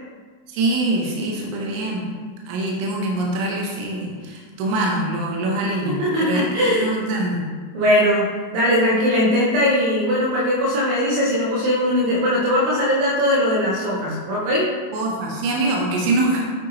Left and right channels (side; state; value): left; late; 27 ms